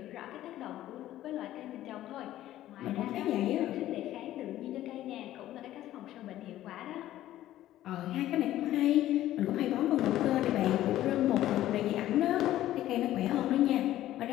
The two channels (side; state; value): right; quieter; 13.7 dB